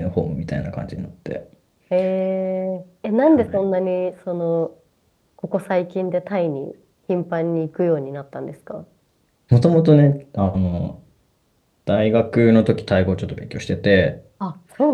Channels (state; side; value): identical; both; correlation 1.00